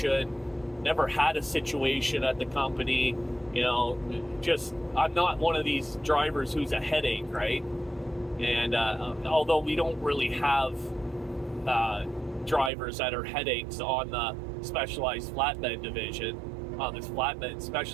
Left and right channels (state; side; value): drops out; left; at 12.7 s